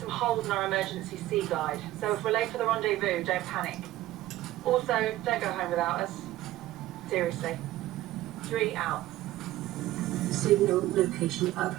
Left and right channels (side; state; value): left; quieter; 15.5 dB